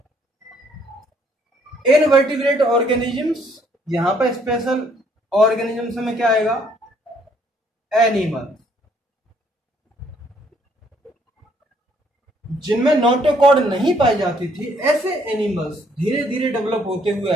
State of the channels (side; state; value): both; normal; correlation 0.66